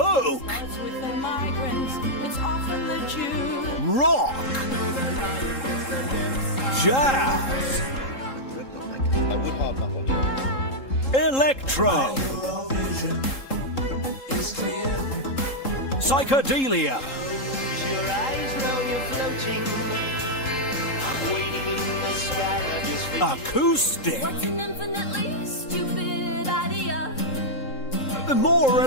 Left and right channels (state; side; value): late; right; 3.7 ms